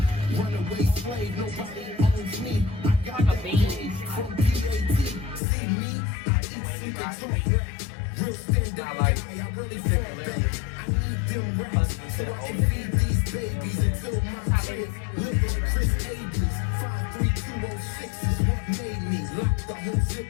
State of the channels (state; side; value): drops out; right; at 5.4 s